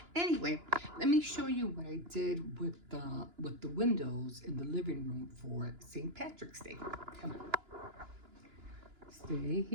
Anyway, let me show you what I did with the windows in the living room for St. Patrick's Day. Come on. Stay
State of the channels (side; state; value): left; late; 2.9 ms